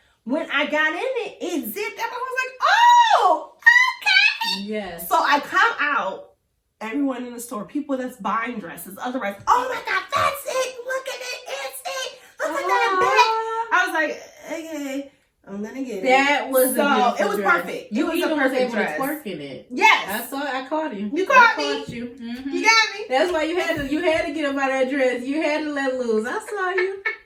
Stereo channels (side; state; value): both; identical; correlation 1.00